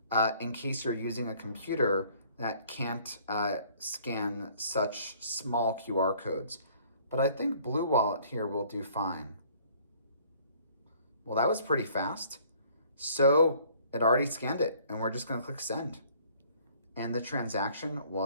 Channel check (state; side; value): inverted; both; correlation -0.57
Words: in case you're using a computer that can't scan such small QR codes. But I think BlueWallet here will do fine. Well, that was pretty fast. So it already scanned it, and we're just going to click Send. And the transaction